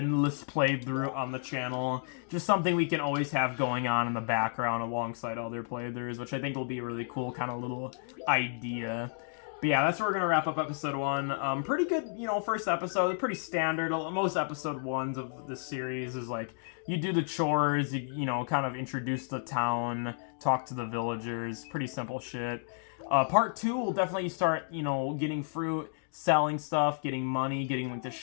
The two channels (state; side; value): silent; right; digital silence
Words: playthrough on the channel. Just something we can always have going on in the background alongside other playthroughs, which I think will be a really cool kind of little idea. But yeah, that's where we're going to wrap up episode 1. Pretty good, you know, first episode. Pretty standard. Most episode 1s of this series is like, you do the chores, you know, kind of introduce the town, talk to the villagers. Pretty simple shit. Part 2 will definitely start, you know, getting fruit, selling stuff, getting money, getting like the